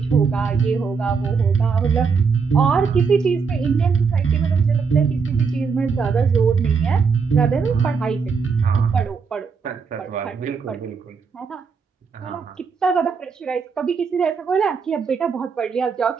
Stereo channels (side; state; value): left; quieter; 5.5 dB